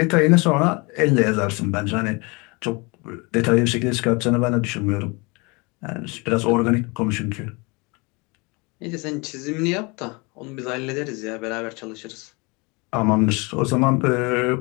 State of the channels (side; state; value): right; quieter; 27.9 dB